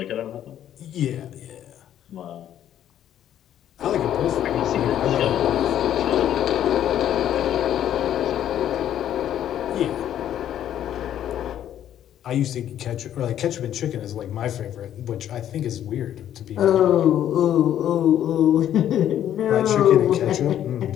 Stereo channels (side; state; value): right; quieter; 10.9 dB